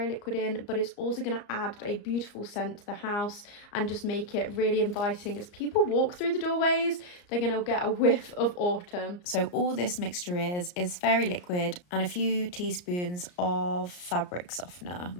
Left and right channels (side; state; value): right; late; 34 ms